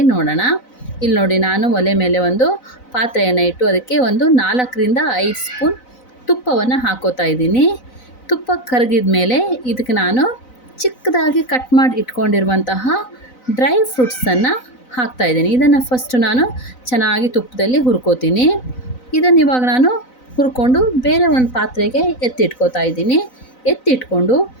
ನೋಡೋಣ. ಇಲ್ಲಿ ನೋಡಿ, ನಾನು ಒಲೆ ಮೇಲೆ ಒಂದು ಪಾತ್ರೆಯನ್ನು ಇಟ್ಟು ಅದಕ್ಕೆ ಒಂದು 4ರಿಂದ 5 ಸ್ಪೂನ್ ತುಪ್ಪವನ್ನು ಹಾಕೋತಾ ಇದ್ದೀನಿ. ತುಪ್ಪ ಕರಗಿದ ಮೇಲೆ ಇದಕ್ಕೆ ನಾನು ಚಿಕ್ಕದಾಗಿ ಕಟ್ ಮಾಡಿ ಇಟ್ಕೊಂಡಿರುವಂತಹ ಡ್ರೈ ಫ್ರೂಟ್ಸನ್ನು ಹಾಕ್ತಾಯಿದ್ದೀನಿ. ಇದನ್ನು ಫಸ್ಟು ನಾನು ಚೆನ್ನಾಗಿ ತುಪ್ಪದಲ್ಲಿ ಹುರ್ಕೋತೀನಿ. ಇದನ್ನು ಇವಾಗ ನಾನು ಹುರ್ಕೊಂಡು ಬೇರೆ ಒಂದು ಪಾತ್ರೆಗೆ ಎತ್ತಿಟ್ಕೋತಾ ಇದ್ದೀನಿ. ಎತ್ತಿಟ್ಕೊಂಡು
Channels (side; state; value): right; late; 4.0 ms